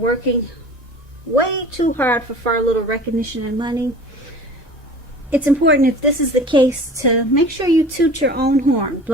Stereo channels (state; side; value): normal; both; correlation 0.41